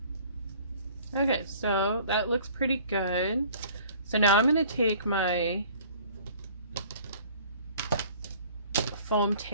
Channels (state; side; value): inverted; both; correlation -0.51